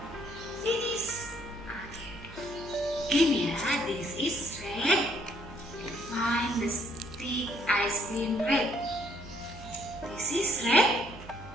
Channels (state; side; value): noise; right; hum, 16 dB below the sound